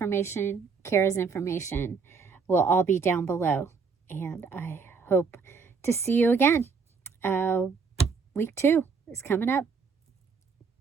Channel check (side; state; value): left; quieter; 5.2 dB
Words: Cara's information will all be down below. And I hope to see you again. Week 2 is coming up.